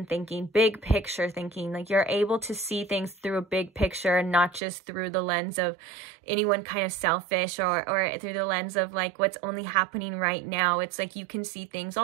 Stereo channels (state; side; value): drops out; left; at 4.6 s